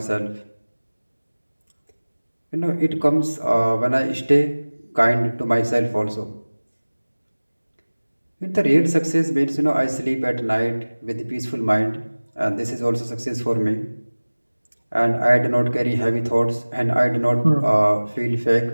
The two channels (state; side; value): inverted; both; correlation -1.00